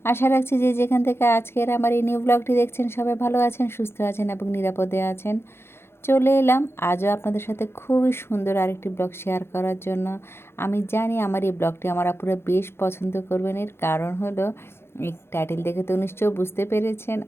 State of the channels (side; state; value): right; late; 0.12 ms